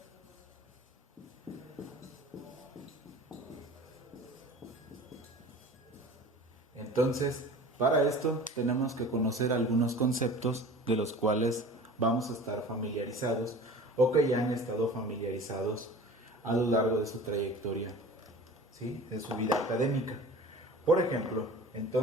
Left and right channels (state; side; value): normal; both; correlation 0.40